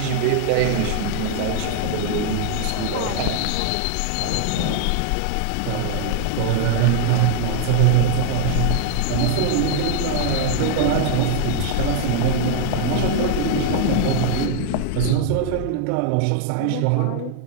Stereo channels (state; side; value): different; both; correlation 0.00